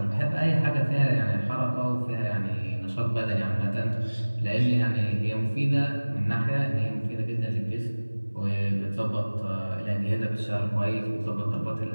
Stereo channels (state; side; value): inverted; both; correlation -1.00